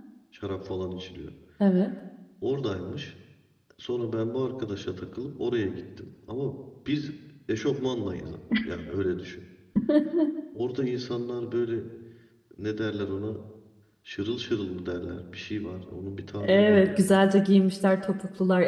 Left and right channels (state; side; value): identical; both; correlation 1.00